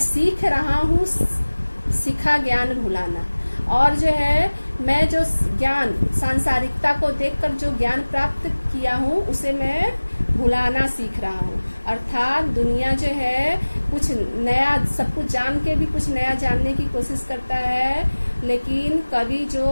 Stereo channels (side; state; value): both; inverted; correlation -1.00